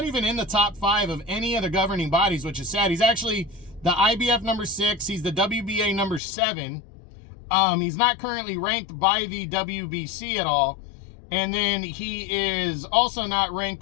even in the top 5 of any of the governing bodies, which is sad. He's actually the IBF number 6. He's the WBA number 7. He's not currently ranked by the WBC at all. And then he is also not ranked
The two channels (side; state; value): right; drops out; at 6.2 s